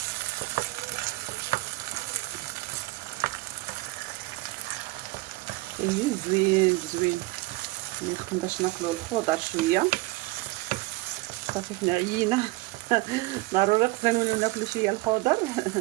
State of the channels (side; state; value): left; quieter; 21.6 dB